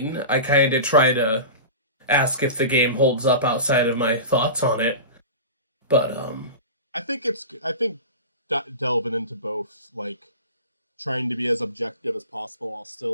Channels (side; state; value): both; inverted; correlation -0.31